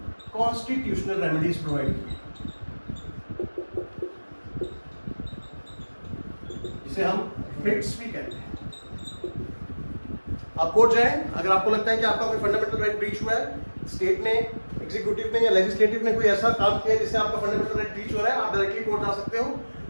constitutional remedies provide की, जिसे हम रिट्स भी कहते हैं। आप कोर्ट जाएं, अगर आपको लगता है कि आपका कोई फंडामेंटल राइट ब्रीच हुआ है, स्टेट ने, एग्जीक्यूटिव ने या लेजिस्लेटिव ने कोई ऐसा काम किया जिससे आपका फंडामेंटल राइट ब्रीच हो रहा है, आप डायरेक्टली कोर्ट जा सकते हो।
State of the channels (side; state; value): both; inverted; correlation -1.00